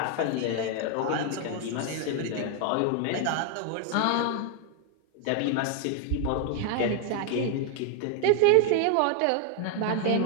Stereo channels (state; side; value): different; both; correlation 0.00